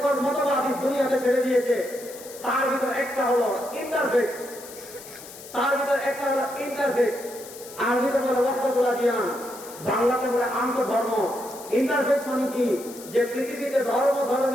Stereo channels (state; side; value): noise; left; hiss, 16 dB below the sound